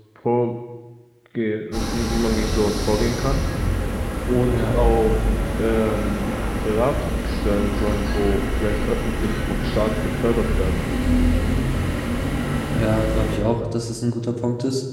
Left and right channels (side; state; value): both; identical; correlation 1.00